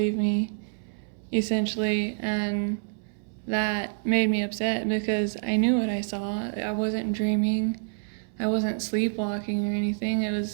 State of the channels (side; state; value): left; silent; 60 dB below the other